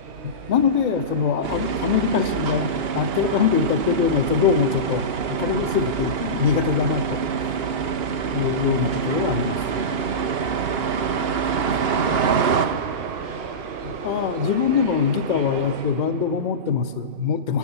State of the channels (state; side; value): late; left; 2.9 ms